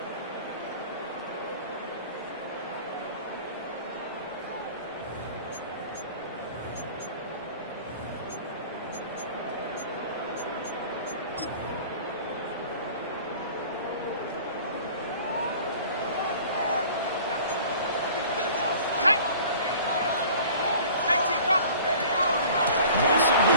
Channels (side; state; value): both; inverted; correlation -0.46